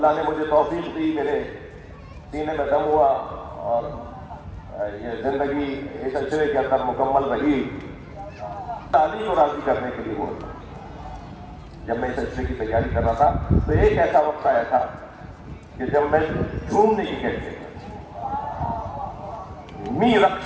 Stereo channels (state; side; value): identical; both; correlation 1.00